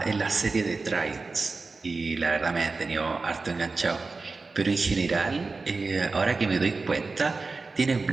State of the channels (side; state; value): left; quieter; 4.0 dB